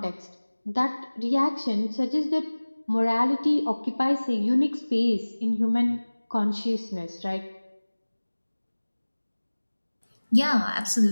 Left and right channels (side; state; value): both; inverted; correlation -1.00